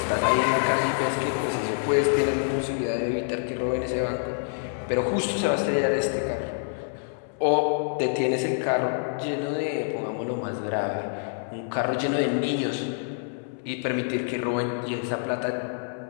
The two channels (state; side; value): silent; right; 60 dB below the other